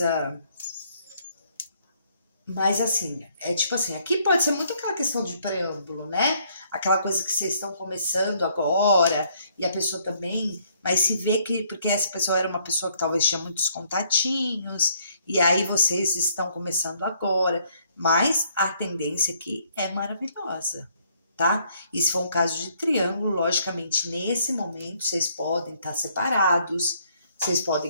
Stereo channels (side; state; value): both; inverted; correlation -0.67